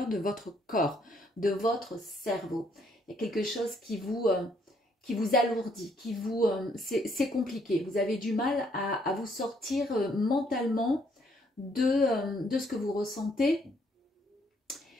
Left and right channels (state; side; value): normal; both; correlation 0.69